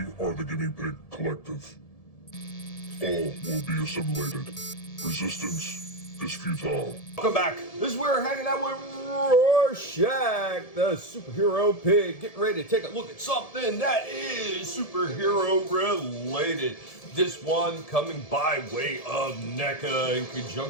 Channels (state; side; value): late; right; 1.7 ms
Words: are the Guinea Pig Collective. All will be assimilated. Resistance is futile. Welcome back. This is where we're hanging out with Rorschach, the superhero pig. Getting ready to take a look at something that is superhero related. This one coming by way of Neca in